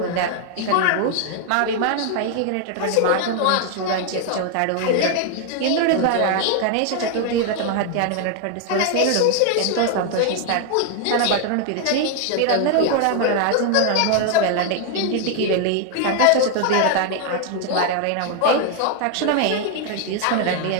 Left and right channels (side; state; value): both; different; correlation 0.00